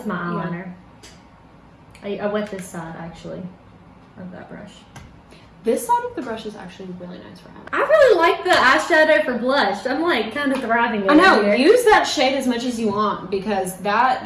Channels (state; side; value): identical; both; correlation 1.00